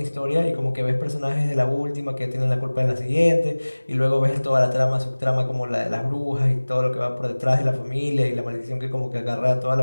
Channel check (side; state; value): both; inverted; correlation -1.00